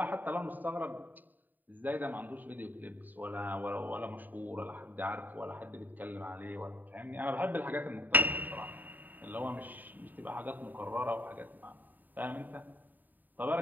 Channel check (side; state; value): left; late; 0.087 ms